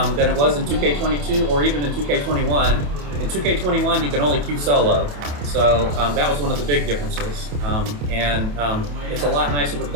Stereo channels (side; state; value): left; late; 28 ms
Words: than it was in 2K22 or even in 2K21. In 2K21, you can only queue solo. So that was one of the big differences. It's a lot nicer to